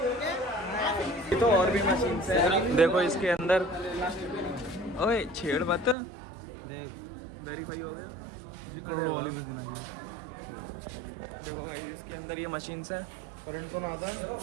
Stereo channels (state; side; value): drops out; left; at 6.0 s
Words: तो और भी मशीन्स है, देखो इसके अंदर। ओए छेड़ मत, वेरीफाई हो गया। अरे वाह, देखो भाई इसके अंदर ये मशीन्स हैं। करंट तो ना आता है।